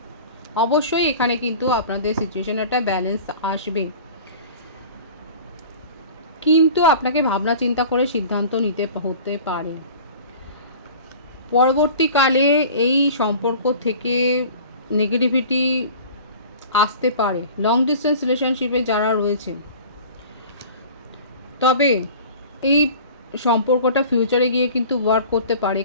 অবশ্যই এখানে কিন্তু আপনাদের সিচুয়েশানে একটা ব্যালেন্স আসবে, কিন্তু আপনাকে ভাবনা চিন্তা করে সিদ্ধান্ত নিতে হতে পারে। পরবর্তীকালে এই সম্পর্ক থেকে নেগেটিভিটি আসতে পারে লং ডিস্টেন্স রিলেশনশিপে যারা রয়েছে, তবে এই সম্পর্কটা ফিউচারে গিয়ে কিন্তু ওয়ার্ক করতে পারে।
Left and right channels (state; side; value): inverted; both; correlation -0.42